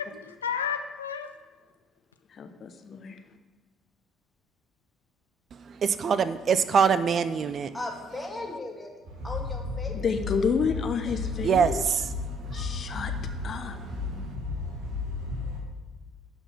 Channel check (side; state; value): both; normal; correlation 0.61